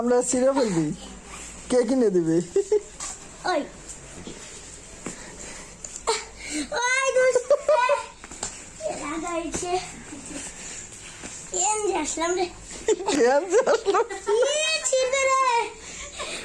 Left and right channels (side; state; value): both; identical; correlation 1.00